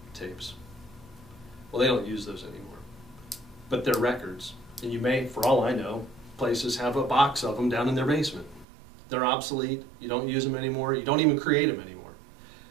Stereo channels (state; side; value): drops out; left; at 8.7 s